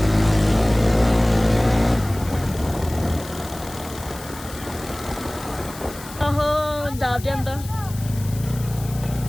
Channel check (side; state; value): left; noise; hiss, 16 dB below the sound